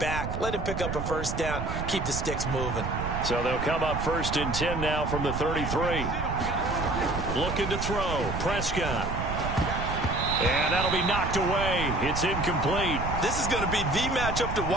Let him pick up a first down. Keep the sticks moving. So they'll come up 1st and 10 now from the 33. Looking to throw. Prescott. And that'll be knocked away. It's incomplete. This is going to be the matchup to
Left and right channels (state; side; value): noise; right; rumble, 4 dB below the sound